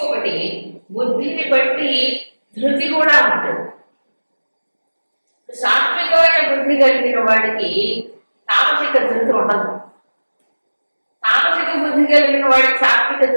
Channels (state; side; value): inverted; both; correlation -1.00